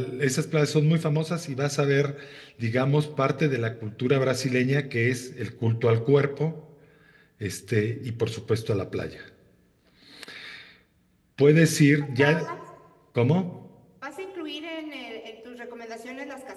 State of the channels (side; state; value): both; identical; correlation 1.00